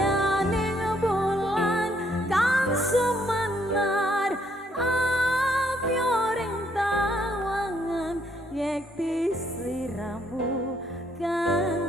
bulan kang sumenar apyoring tawangan yekti sliramu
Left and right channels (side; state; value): both; normal; correlation 0.69